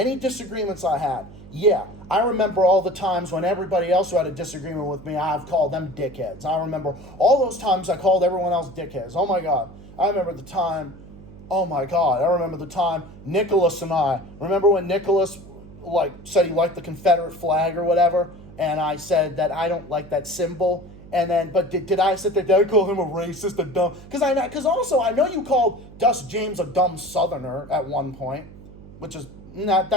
disagreements I had. Yeah, I remember all the times when everybody else who had a disagreement with me, I've called them dickheads. I remember all those times I called everyone else dickheads. Oh my God. I remember the time Nicholas and I, remember when Nicholas said he liked the Confederate flag or whatever, and I said that I don't like that symbol. And then, but did I sit there? Did I call him a racist, a dumb? Because also I know you called Dust James a dumb Southerner at one point, which is not.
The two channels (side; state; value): right; noise; hum, 18 dB below the sound